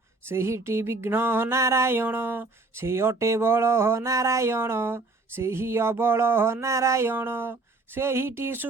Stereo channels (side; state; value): left; quieter; 3.4 dB